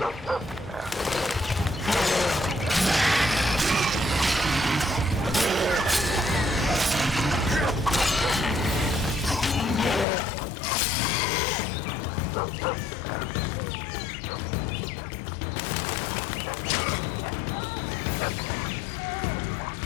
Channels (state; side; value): drops out; right; at 10.1 s